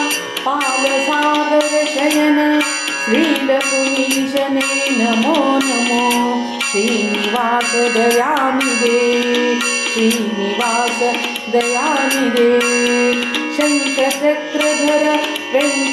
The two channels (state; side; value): identical; both; correlation 1.00